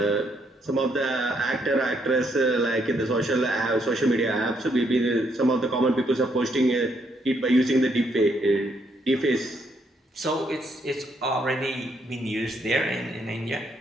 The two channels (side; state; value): both; normal; correlation 0.73